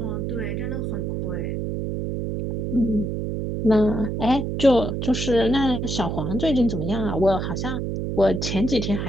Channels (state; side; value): noise; right; hum, 2 dB below the sound